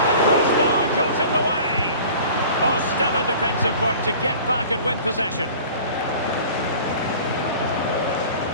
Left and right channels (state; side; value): inverted; both; correlation -0.44